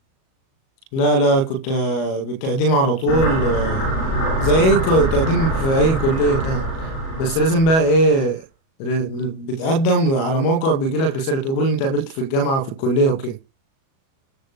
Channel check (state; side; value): late; right; 37 ms